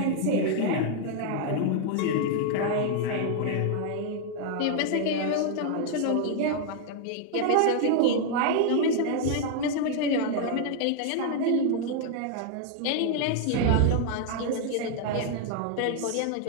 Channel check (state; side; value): different; both; correlation 0.00